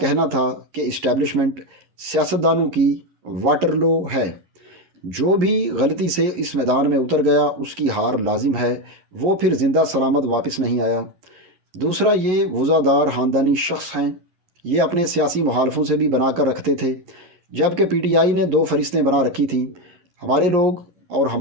تھا کہ اسٹیبلشمنٹ سیاستدانوں کی واٹرلو ہے۔ جو بھی غلطی سے اس میدان میں اتر گیا اس کی ہار لازم ہے، وہ پھر زندہ سلامت واپس نہیں آیا۔ دوسرا، یہ وزادار خاندانی شخص ہیں۔ یہ اپنے سیاسی مخالفوں سے بھی بنا کر رکھتے تھے، جبکہ پی ٹی آئی نے دو فہرستیں بنا رکھی تھیں، ہمارے لوگ اور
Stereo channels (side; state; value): left; late; 11 ms